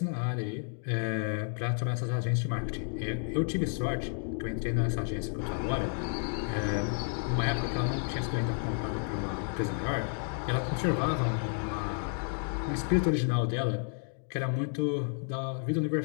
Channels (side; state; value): right; silent; 55 dB below the other